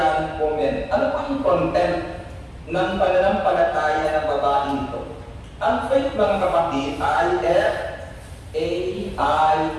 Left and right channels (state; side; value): identical; both; correlation 1.00